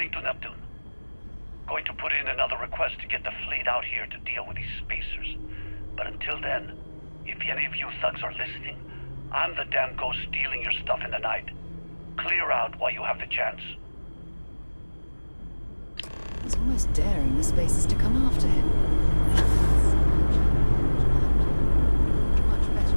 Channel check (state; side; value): inverted; both; correlation -1.00